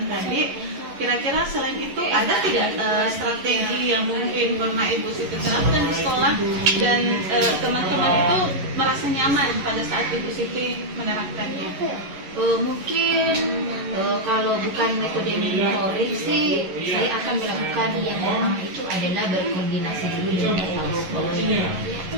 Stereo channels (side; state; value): left; late; 11 ms